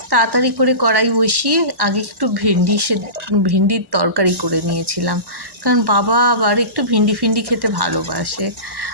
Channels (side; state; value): left; late; 1.1 ms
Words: তাড়াতাড়ি করে কড়াই বসিয়ে আগে একটু ভিন্ডির তরকারি করে নিয়েছিলাম, কারণ বাবা আবার একটু ভিন্ডি খেতে ভালোবাসে।